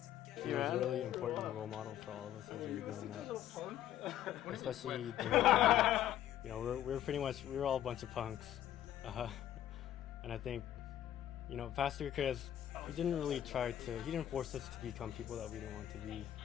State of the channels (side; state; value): right; quieter; 11.9 dB